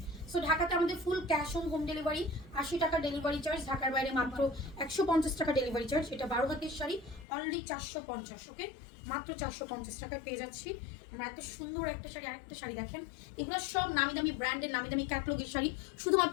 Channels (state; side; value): drops out; right; at 7.2 s